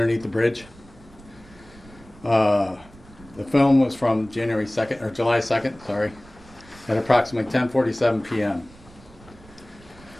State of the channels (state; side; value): noise; right; rumble, 23 dB below the sound